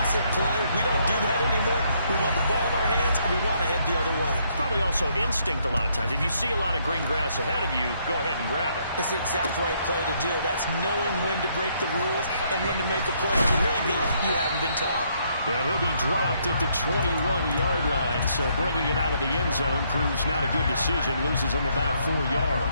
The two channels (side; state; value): both; inverted; correlation -0.71